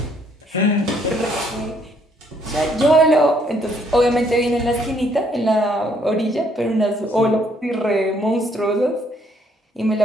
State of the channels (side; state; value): both; normal; correlation 0.67